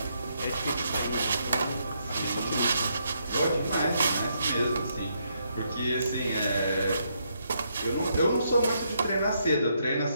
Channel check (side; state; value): both; inverted; correlation -0.77